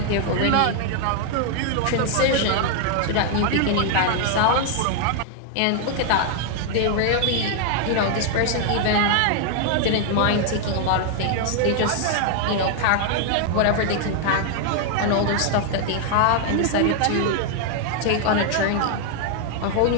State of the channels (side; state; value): both; different; correlation 0.00